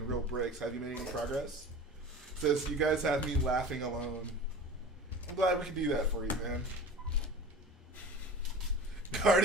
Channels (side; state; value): both; normal; correlation 0.36